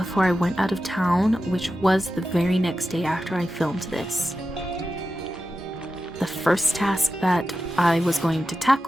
I went out of town, which was the very next day after I filmed this. The first task that I was going to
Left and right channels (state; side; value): normal; both; correlation 0.92